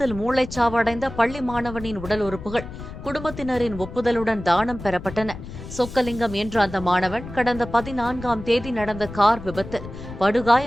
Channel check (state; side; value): noise; left; rumble, 12 dB below the sound